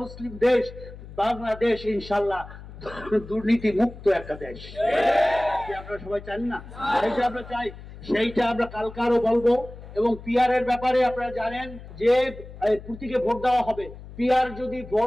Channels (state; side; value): noise; left; hum, 15 dB below the sound